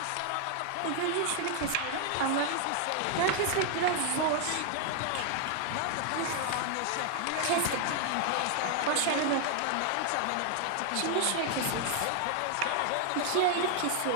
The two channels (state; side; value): different; both; correlation 0.00